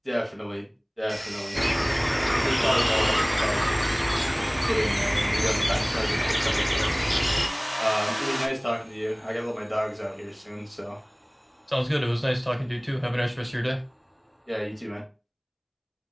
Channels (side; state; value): both; identical; correlation 1.00